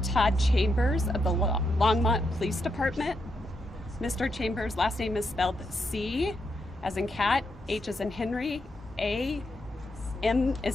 Todd Chambers of the Longmont Police Department. Mr. Chambers' last name is spelled C as in cat, H as in Henry, A, M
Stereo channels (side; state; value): both; normal; correlation 0.82